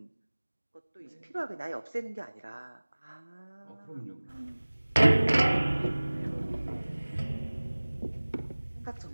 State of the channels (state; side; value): inverted; both; correlation -1.00